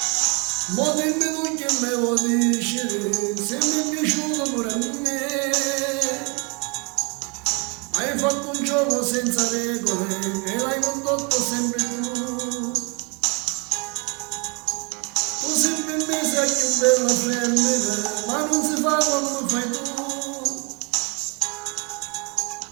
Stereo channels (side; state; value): left; quieter; 32.5 dB